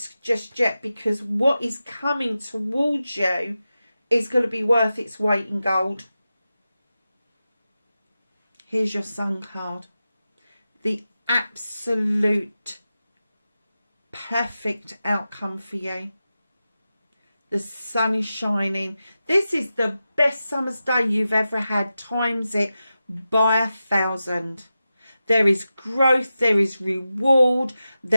just yet, because what is coming towards you is going to be worth its weight in gold. Here's your Sun card. The absolute perfect outcome for you. The sun is shining. This is the best summer's day you've ever had. Times it by 1,000. There is growth, there is reward,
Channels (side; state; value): both; inverted; correlation -0.92